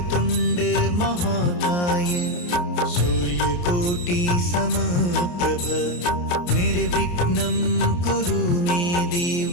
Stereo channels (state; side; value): late; right; 28 ms